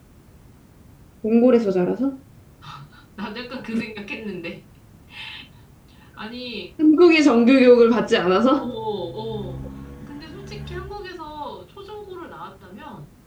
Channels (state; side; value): identical; both; correlation 1.00